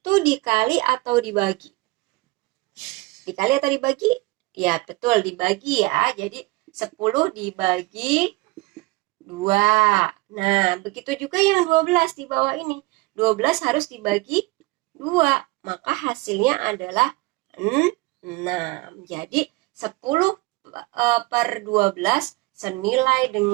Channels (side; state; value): left; quieter; 22.7 dB